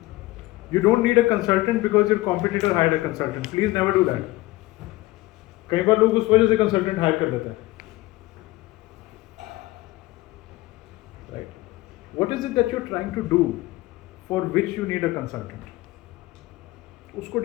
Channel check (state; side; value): quieter; right; 19.1 dB